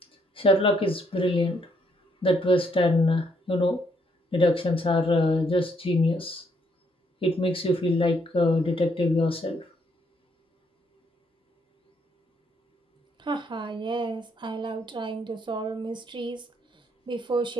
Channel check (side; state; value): both; normal; correlation 0.72